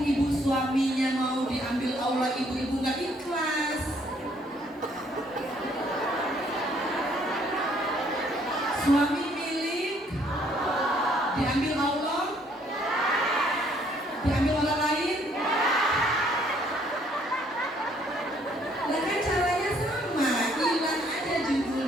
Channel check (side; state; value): both; normal; correlation 0.65